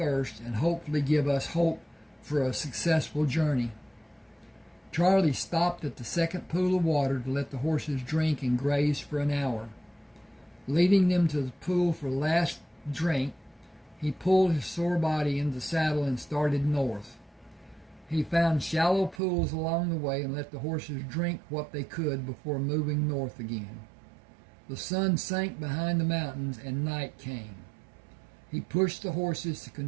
and hopefully give us hope for a successful journey. Charlie stopped at the second pool of water to let the horses drink and graze for an hour. Leading them to the pool for the last drink, he pulled his sore body into the saddle and started north. He found shallow pools along the way and let the horses drink what they could before moving north again. The sun sank behind the mountains and night came. He pushed the horses to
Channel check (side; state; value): left; drops out; at 19.2 s